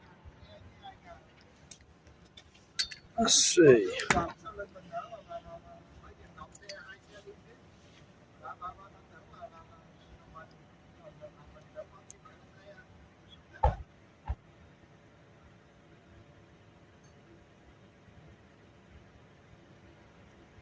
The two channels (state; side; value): identical; both; correlation 1.00